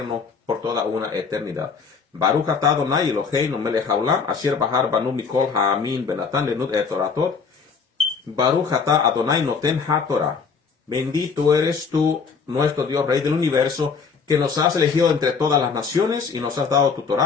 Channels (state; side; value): quieter; right; 5.4 dB